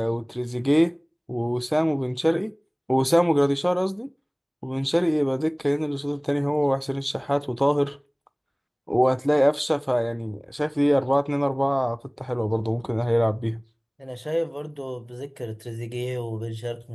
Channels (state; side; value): identical; both; correlation 1.00